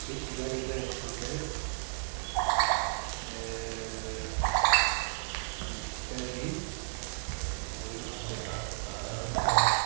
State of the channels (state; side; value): silent; left; digital silence